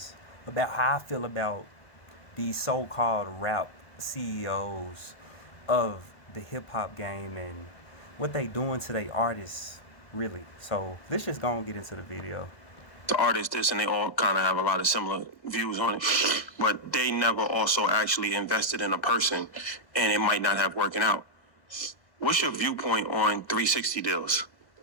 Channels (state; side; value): late; right; 1.5 ms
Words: about how I feel about these so-called rap CEOs of the hip-hop game and what they doing to their artists, really. So let's just go and get into the video. The artists this and they all kind of have a lot of similar views on it, but they never also actually invested in a person, and it might not have working out. What's your viewpoint on 360 deals?